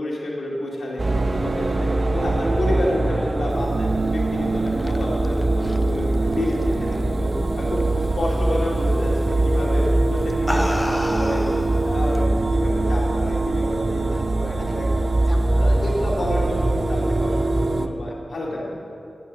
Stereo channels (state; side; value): normal; both; correlation 0.97